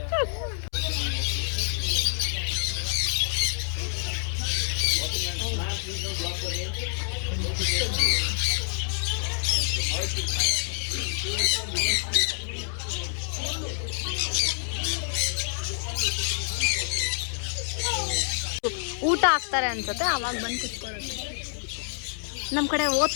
ಊಟ ಹಾಕ್ತಾರೆ ಅನ್ಸುತ್ತೆ, ಅವಾಗ ಬಂದು ಕುತ್ಕೊಳ್ಳೋದು. ನಮ್ಮ ಕಡೆ ಓದ್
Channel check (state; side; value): silent; right; 60 dB below the other